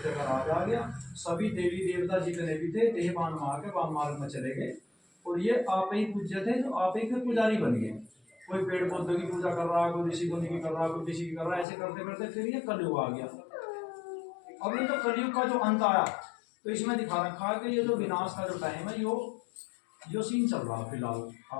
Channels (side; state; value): right; drops out; at 11.7 s